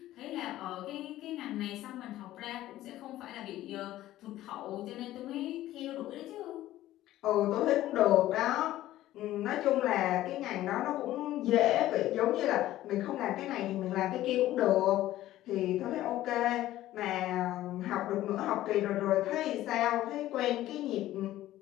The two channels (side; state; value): right; quieter; 14.6 dB